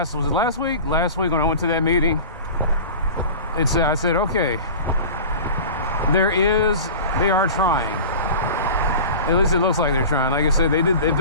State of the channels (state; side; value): inverted; both; correlation -0.36